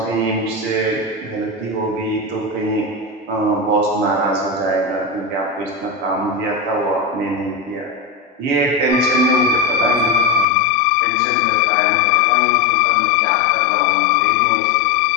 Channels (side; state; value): right; drops out; at 10.5 s